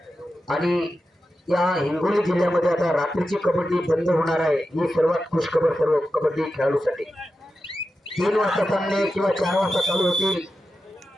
आणि या हिंगोली जिल्ह्यामध्ये आता रात्रीची कबड्डी बंद होणार आहे. ही सर्वात खुशखबर सर्व कबड्डी खेळाडूसाठी. 3 वाजता सामने किंवा 4 वाजता चालू होतील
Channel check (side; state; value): both; normal; correlation 0.91